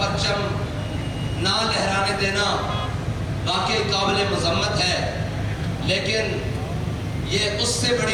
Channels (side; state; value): both; identical; correlation 1.00